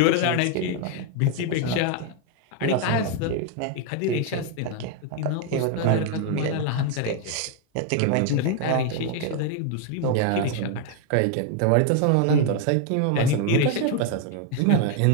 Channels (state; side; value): different; both; correlation 0.01